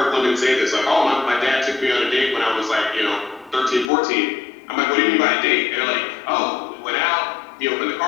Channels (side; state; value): right; drops out; at 3.9 s